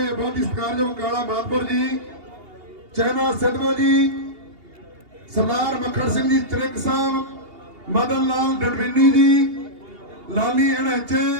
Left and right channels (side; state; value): left; late; 2.8 ms